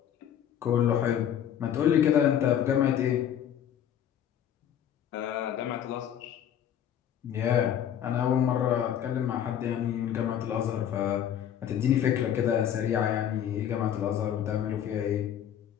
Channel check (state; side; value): quieter; right; 9.8 dB